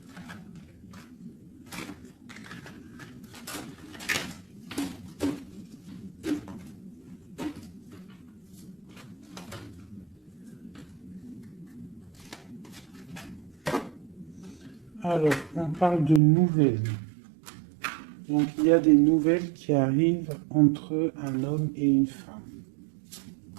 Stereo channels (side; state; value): left; drops out; at 16.2 s